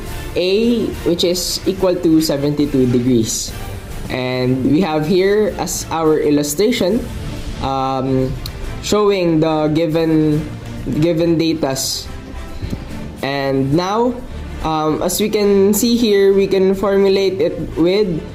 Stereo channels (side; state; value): both; identical; correlation 1.00